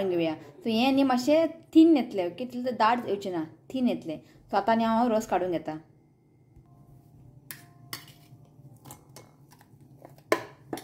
घेवया. सो हें न्ही मातशें थीन येतलें. ओके तितलें दाट येवचें ना थीन येतलें. सो आतां न्ही हांव रोस काडून घेता.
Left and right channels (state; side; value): identical; both; correlation 1.00